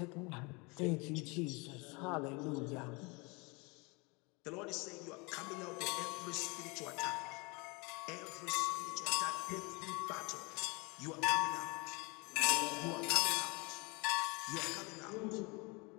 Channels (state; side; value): quieter; right; 28.3 dB